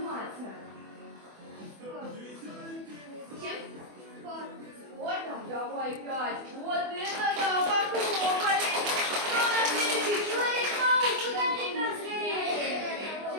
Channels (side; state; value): left; late; 24 ms